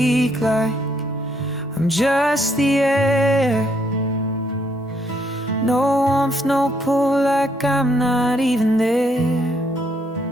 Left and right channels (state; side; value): normal; both; correlation 0.71